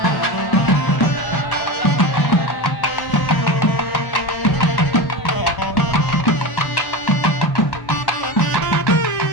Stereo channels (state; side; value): late; right; 1.0 ms